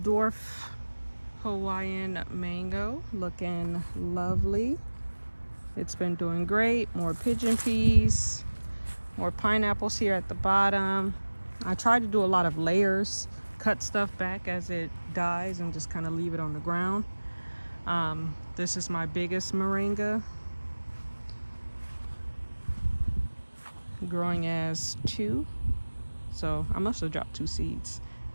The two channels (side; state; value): both; inverted; correlation -1.00